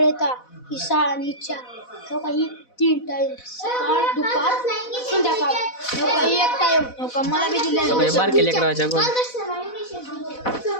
येतात ही 6 आणि 4 हो काही 3 टाइम सकाळ दुपार संध्याकाळ हो काही 1 टाइम हो का मला बी दिले बारके लेकराच्या गोळ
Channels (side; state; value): right; late; 4.1 ms